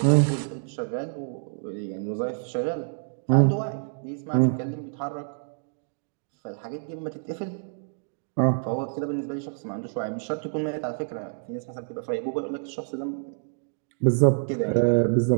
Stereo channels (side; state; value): left; silent; digital silence